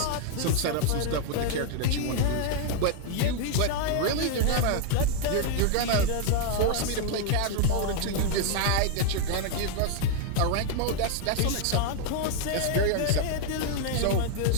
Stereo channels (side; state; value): both; different; correlation 0.00